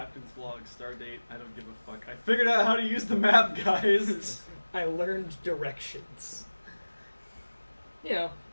log, star date. I don't give a fuck. I figured out how to use the map, guys. I learned directions. You know,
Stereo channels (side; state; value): both; inverted; correlation -1.00